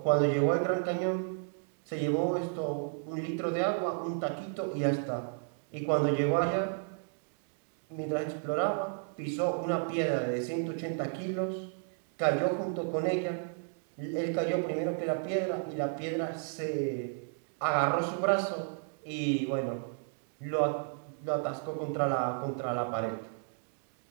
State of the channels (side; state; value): left; silent; 55 dB below the other